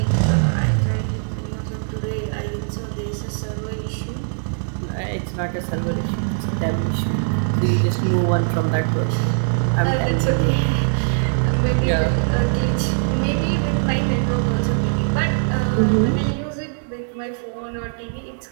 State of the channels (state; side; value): silent; left; digital silence